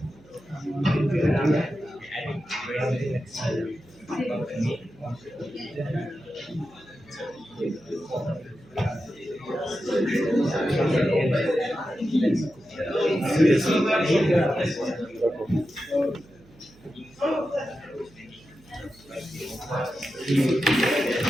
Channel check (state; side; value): noise; right; hum, 26 dB below the sound